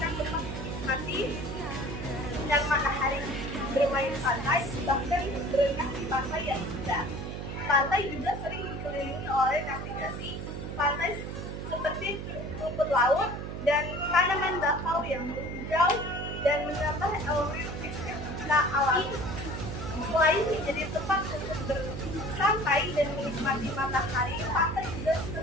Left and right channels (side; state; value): right; noise; hum, 6 dB below the sound